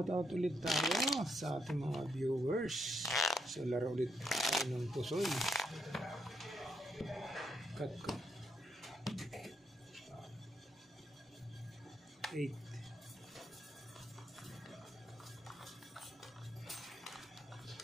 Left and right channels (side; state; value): both; normal; correlation 0.78